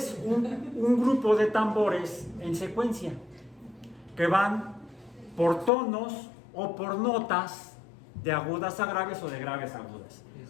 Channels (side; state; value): right; drops out; at 5.7 s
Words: un grupo de tambores en secuencia que van por tonos o por notas de agudas a graves o de graves a agudas.